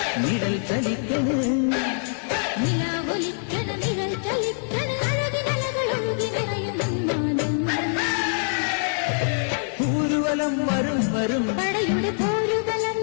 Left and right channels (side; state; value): right; silent; digital silence